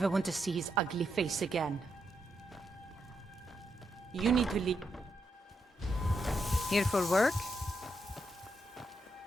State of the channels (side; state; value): both; normal; correlation 0.81